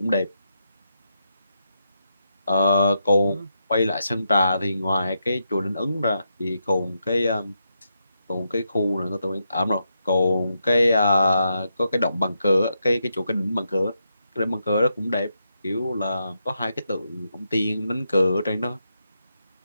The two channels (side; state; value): both; inverted; correlation -0.83